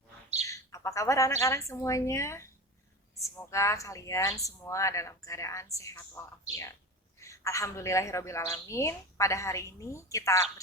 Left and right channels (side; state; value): both; normal; correlation 0.27